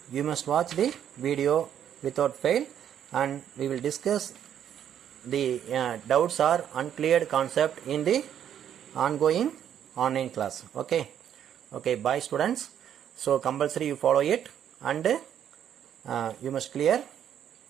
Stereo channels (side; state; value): left; quieter; 9.6 dB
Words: you must watch the video without fail, and we will discuss the doubts or uncleared concept in the ongoing online class. Okay. Okay, bye students. So compulsory you follow it, and you must clear